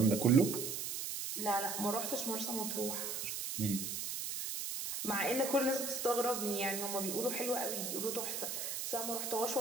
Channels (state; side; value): noise; right; hiss, 3 dB below the sound